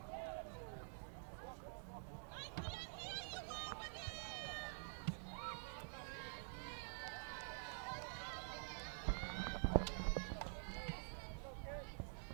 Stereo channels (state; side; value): silent; left; digital silence